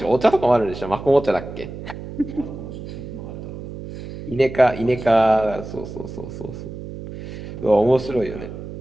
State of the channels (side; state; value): right; noise; hum, 11 dB below the sound